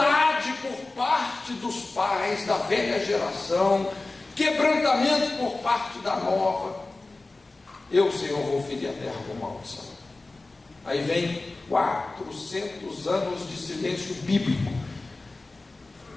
por parte dos pais da velha geração, quebrantamento por parte da nova, eu, Senhor, vou ferir a terra com maldição. Aí vem 400 anos de silêncio bíblico.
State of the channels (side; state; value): right; quieter; 3.2 dB